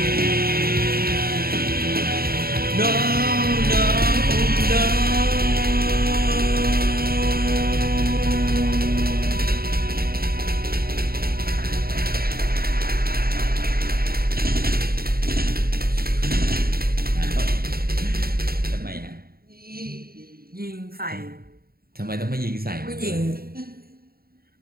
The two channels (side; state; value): left; late; 0.44 ms